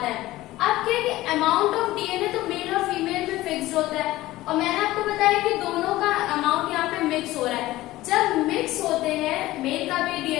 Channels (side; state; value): right; quieter; 17.0 dB